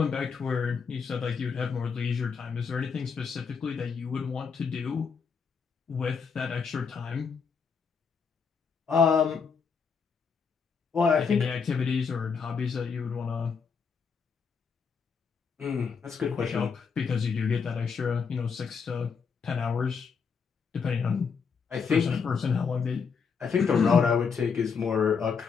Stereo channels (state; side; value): quieter; right; 5.8 dB